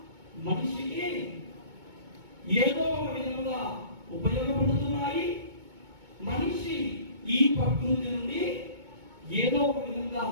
మనిషికి ఏదో ఒక విధంగా ఉపయోగపడుతున్నాయి. మనిషి ఈ ప్రకృతి నుండి ఏదో ఒక విధంగా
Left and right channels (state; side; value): late; left; 2.2 ms